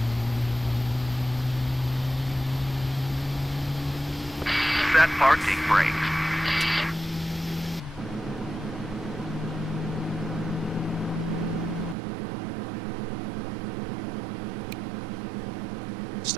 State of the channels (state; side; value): drops out; left; at 12.0 s